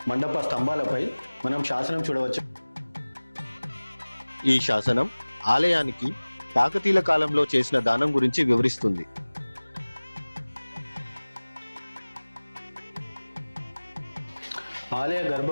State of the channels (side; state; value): both; inverted; correlation -1.00